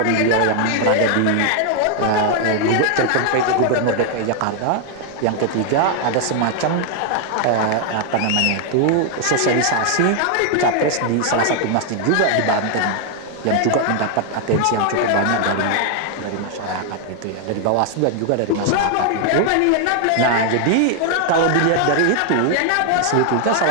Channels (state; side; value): different; both; correlation 0.00